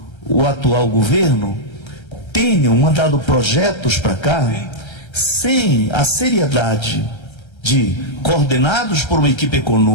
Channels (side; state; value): right; late; 1.3 ms